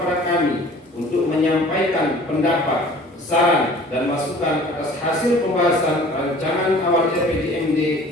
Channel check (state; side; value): normal; both; correlation 0.48